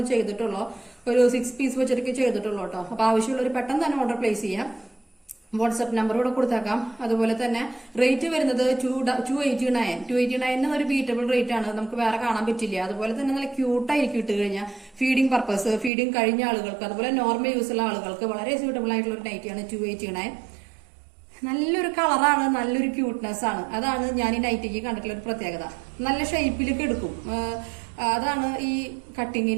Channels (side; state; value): left; drops out; at 15.9 s